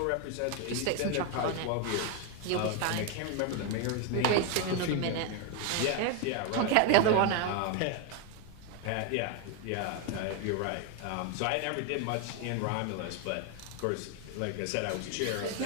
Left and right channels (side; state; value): both; different; correlation 0.01